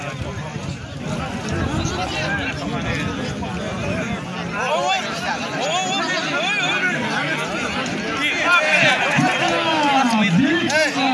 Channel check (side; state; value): both; identical; correlation 1.00